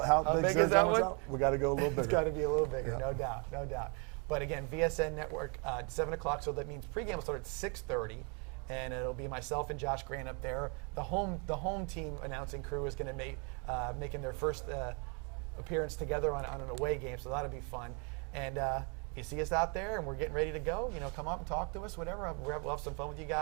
big is that one? We got to go a little bigger. It's got to be a little bigger, no doubt. But again, VSN Network, 7:00. So that means pregame will start at 6:30. and it'll be myself and Josh Grant up there. The home team announcing crew is going to make making their first appearance together on an away game, so that'll be fun. And you see us out there, and we're getting ready to go. Come up and talk to us, whatever. We'll have some fun with you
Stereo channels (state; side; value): quieter; left; 35.1 dB